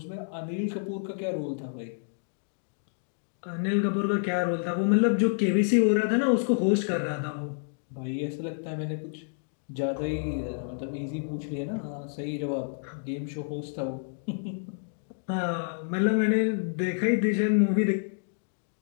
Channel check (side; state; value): right; silent; digital silence